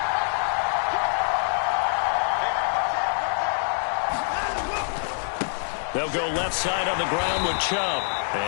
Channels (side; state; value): right; silent; digital silence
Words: go left side on the ground with Chubb.